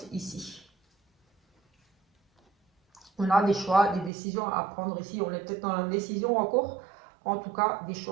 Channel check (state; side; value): drops out; left; at 4.1 s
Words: ici. On a des choix, des décisions à prendre ici, on est peut-être dans la décision encore, en tout cas des